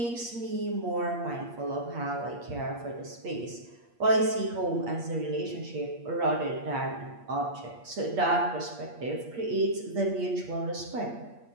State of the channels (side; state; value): left; late; 8.5 ms